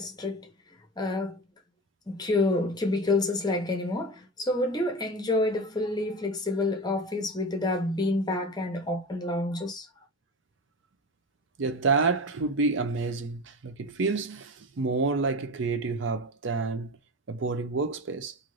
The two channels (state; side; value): normal; both; correlation 0.27